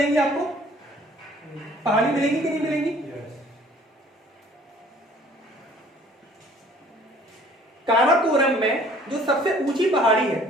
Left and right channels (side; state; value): both; normal; correlation 0.54